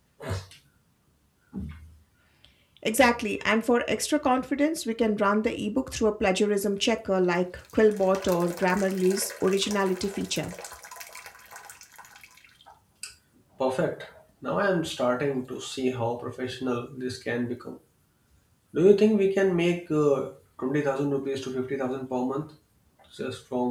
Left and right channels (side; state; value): both; identical; correlation 1.00